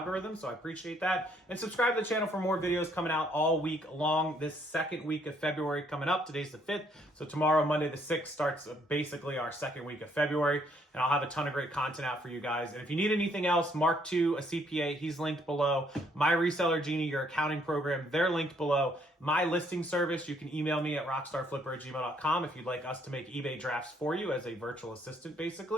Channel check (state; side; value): normal; both; correlation 0.67